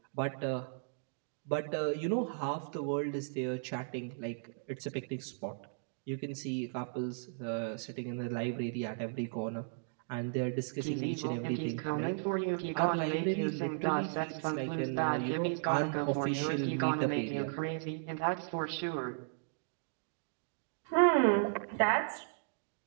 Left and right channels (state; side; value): silent; left; digital silence